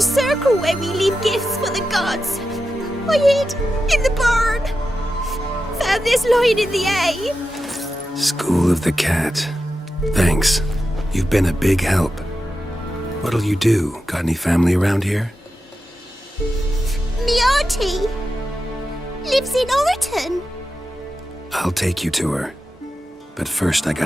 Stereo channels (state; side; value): normal; both; correlation 0.90